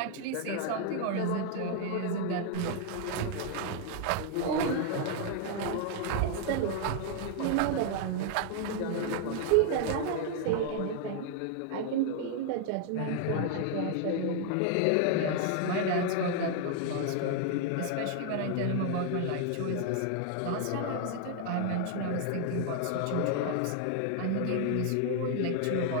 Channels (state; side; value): different; both; correlation 0.00